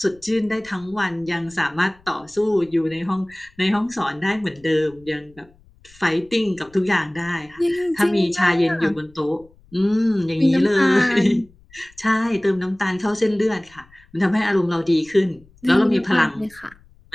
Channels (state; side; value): noise; left; rumble, 28 dB below the sound